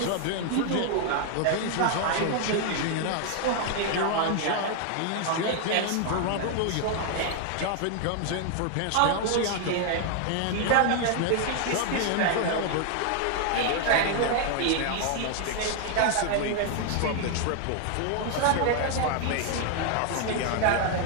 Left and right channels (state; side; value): different; both; correlation 0.00